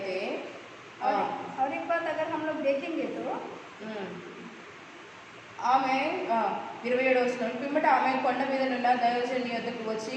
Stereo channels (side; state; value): both; identical; correlation 1.00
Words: और एक बात अगर हम लोग देखेंगे तो ఆమె 27వ వచనం పిమ్మట ఆమె కొండ మీద నున్న దైవజనుని వద్దకు వచ్చి